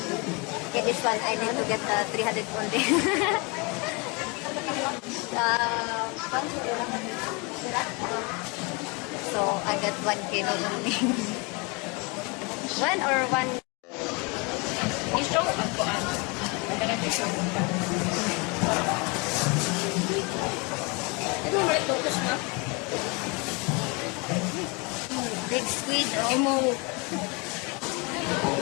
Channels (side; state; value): right; quieter; 29.7 dB